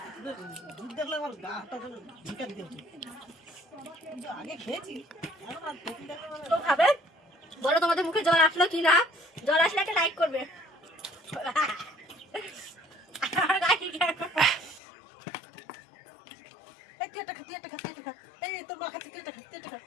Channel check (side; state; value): right; drops out; at 14.8 s